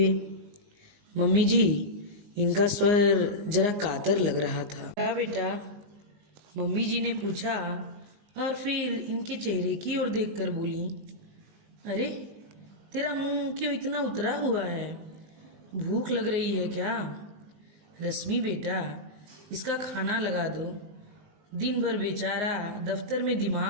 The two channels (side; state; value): left; late; 19 ms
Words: मम्मी जी, इनका स्वर जरा कातर लग रहा था। क्या बेटा? मम्मी जी ने पूछा और फिर इनके चेहरे की ओर देखकर बोली, अरे तेरा मुंह क्यों इतना उतरा हुआ है? भूख लग रही है क्या? रश्मि बेटा, इसका खाना लगा दो। दिन भर बेचारा दफ्तर में